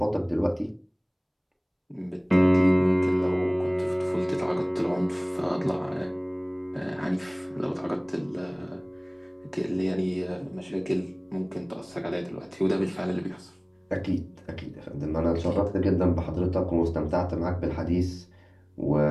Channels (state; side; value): identical; both; correlation 1.00